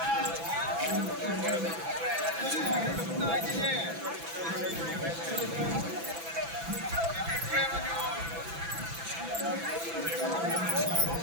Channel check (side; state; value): left; late; 6.0 ms